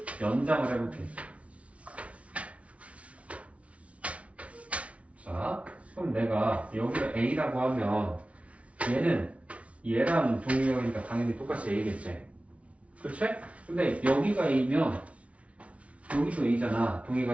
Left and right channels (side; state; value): left; late; 0.064 ms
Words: 연장을 해볼게. 자 그럼 내가 여기를 A라고 하면 얘는 얘랑 동의각이니까 당연히 똑같이 A겠지. 그렇지? 근데 여기가 A면 여기도 A잖아.